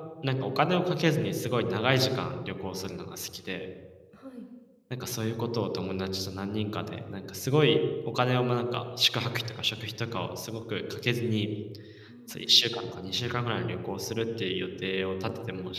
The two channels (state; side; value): identical; both; correlation 1.00